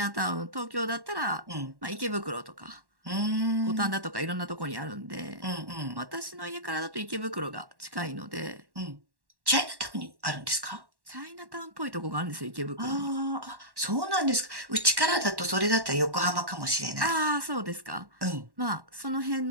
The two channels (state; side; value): late; left; 1.1 ms